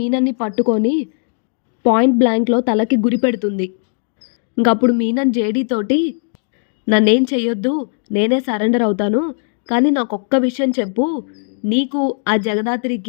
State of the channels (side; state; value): right; silent; digital silence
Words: పట్టుకొని పాయింట్ బ్లాంక్లో తలకి గురి పెడుతుంది. ఇంకప్పుడు మీనన్ జేడీతోటి, నన్నేం చెయ్యొద్దు, నేనే సరెండర్ అవుతాను, కానీ నాకొక్క విషయం చెప్పు, నీకు ఆ